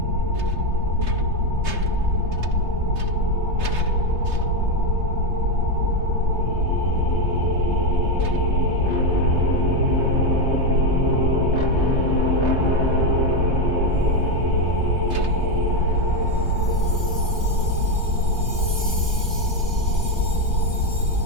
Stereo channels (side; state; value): left; late; 3.3 ms